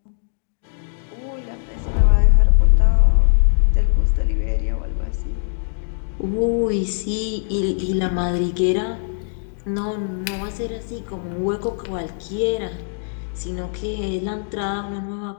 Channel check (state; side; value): silent; right; digital silence